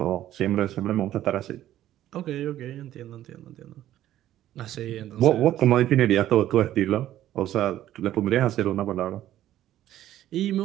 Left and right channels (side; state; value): left; quieter; 12.9 dB